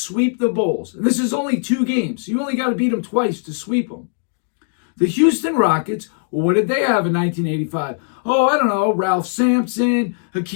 the Bulls, and this is only 2 games, so you only got to beat them twice to sweep them. The Houston Rockets, well, what did they have in 1985? Oh, I don't know, Ralph Sampson,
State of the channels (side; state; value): right; silent; digital silence